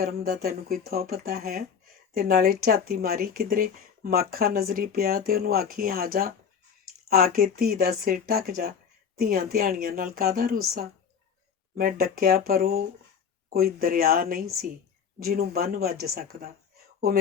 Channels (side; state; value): right; quieter; 7.1 dB